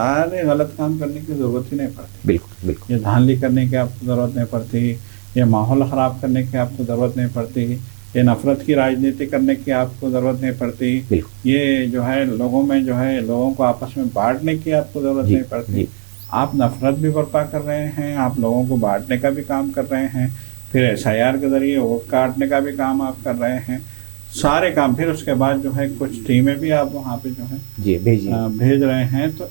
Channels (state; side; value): silent; left; 67 dB below the other